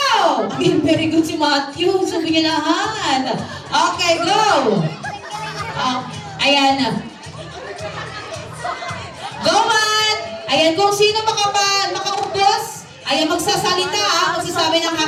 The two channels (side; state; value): both; identical; correlation 1.00